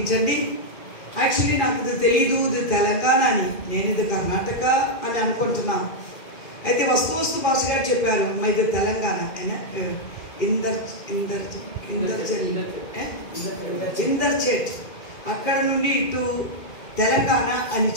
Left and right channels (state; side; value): late; right; 2.5 ms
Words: యాక్చువల్లీ నాకు ఇది తెలియదు, ఇది తెలంగాణ అని, నేను ఇది కర్ణాటక అని అనుకుంటున్నాను. అయితే వస్తు భాష గారు చెప్పారు మా ఇది తెలంగాణ ఇందర్చేట్ అక్కడ నుండి ఇటు తెలంగాణ అని